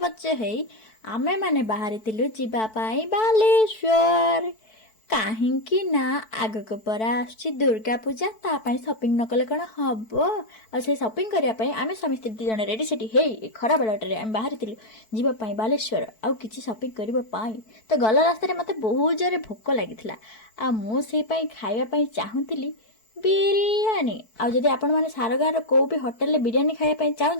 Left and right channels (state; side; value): late; right; 4.6 ms